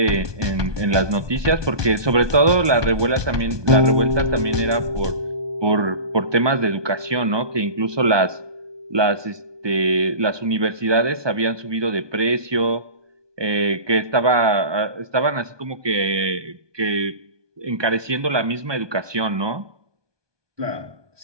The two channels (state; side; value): late; left; 1.2 ms